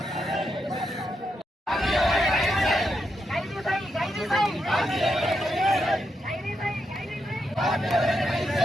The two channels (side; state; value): both; normal; correlation 0.83